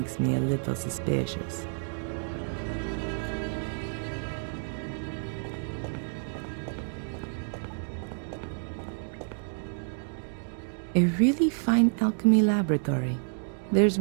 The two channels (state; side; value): silent; left; 58 dB below the other